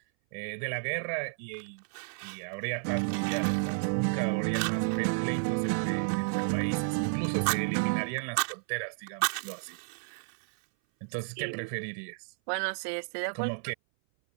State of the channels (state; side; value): silent; left; 57 dB below the other